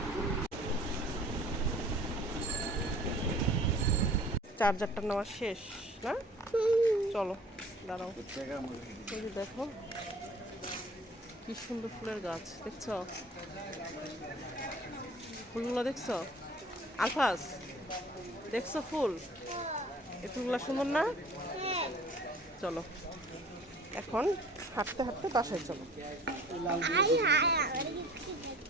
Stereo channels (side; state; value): both; normal; correlation 0.48